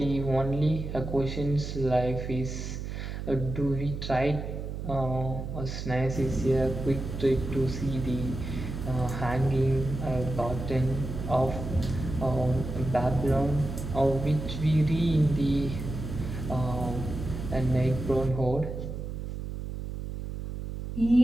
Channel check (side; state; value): right; noise; hum, 6 dB below the sound